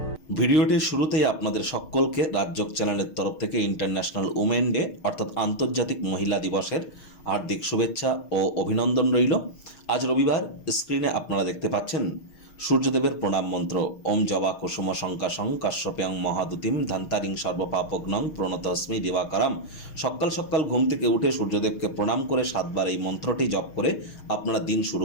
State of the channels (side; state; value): right; late; 6.4 ms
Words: ভিডিওটির শুরুতেই আপনাদের সকলকে রাজযোগ চ্যানেলের তরফ থেকে ইন্টারন্যাশনাল উমেন ডে অর্থাৎ আন্তর্জাতিক মহিলা দিবসের হার্দিক শুভেচ্ছা ও অভিনন্দন রইল। আজ রবিবার স্ক্রিনে আপনারা দেখতে পাচ্ছেন সূর্যদেবের প্রণাম মন্ত্র ওম জবা কুসুম শঙ্কাশং কাশ্যপ্যাং মহাদুতিম ধান্তারিং সর্বপাপগ্নং প্রণতস্মি দিবাকরাম। সকাল সকাল ঘুম থেকে উঠে সূর্যদেবকে প্রণাম করে 7বার এই মন্ত্রটি জপ করে আপনারা দিন শুরু